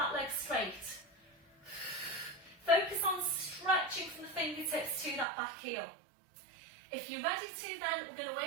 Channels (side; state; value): left; drops out; at 5.2 s